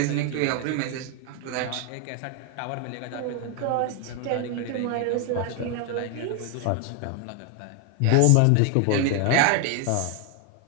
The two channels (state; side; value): different; both; correlation 0.01